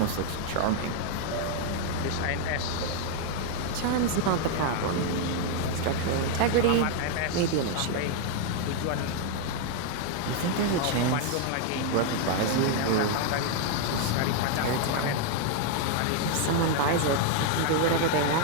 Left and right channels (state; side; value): different; both; correlation 0.00